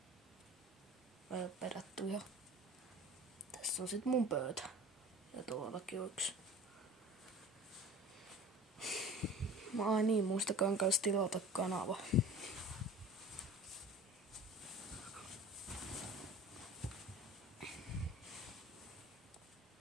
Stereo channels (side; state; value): both; normal; correlation 0.40